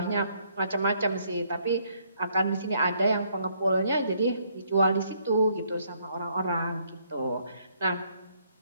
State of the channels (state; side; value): inverted; both; correlation -0.69